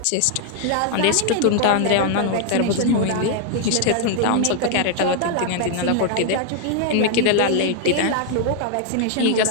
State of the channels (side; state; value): both; different; correlation 0.00